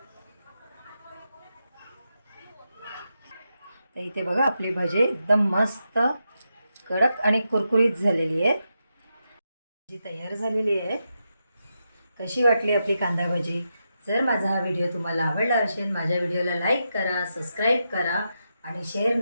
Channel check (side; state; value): both; inverted; correlation -0.86